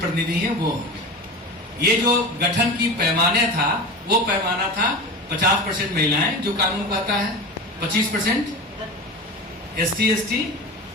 हैं वो होंगे। ये जो गठन की पैमाने था, वो पैमाना था 50% महिलाएं जो कानून कहता है, 25% ST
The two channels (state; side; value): normal; both; correlation 0.29